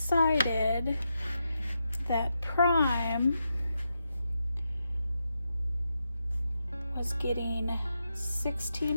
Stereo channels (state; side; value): inverted; both; correlation -0.85